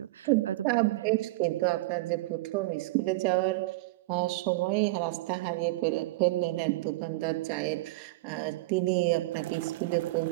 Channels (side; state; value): left; quieter; 20.5 dB